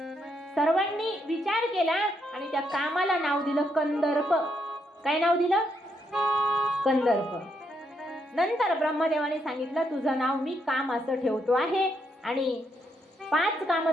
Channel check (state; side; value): normal; both; correlation 0.77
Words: सर्वांनी विचार केला आणि त्या कामाला नाव दिलं कंदर्प. काय नाव दिलं? कंदर्प. नंतर ब्रह्मदेवाने सांगितलं तुझं नाव मी काम असं ठेवतो आहे आणि 5